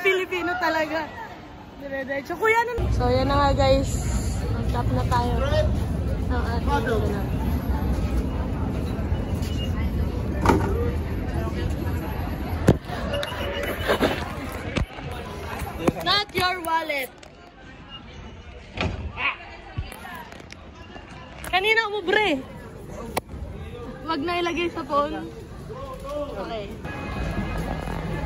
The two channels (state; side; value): identical; both; correlation 1.00